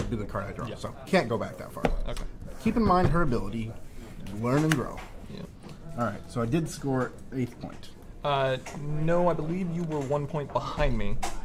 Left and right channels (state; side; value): identical; both; correlation 1.00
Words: be the card I draw. Yeah. So can't go back that far. Okay. Keep in mind her ability, learn and grow. Yeah. All right, so I did score 8th point. No, I believe you were 1 point behind me,